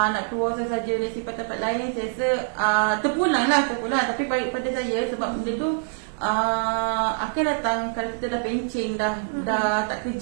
keluar saja dari tempat-tempat lain, saya rasa terpulang. Tapi baik pada saya sebab benda tu akan datang kalau kita dah pencing, dah tak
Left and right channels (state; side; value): silent; left; digital silence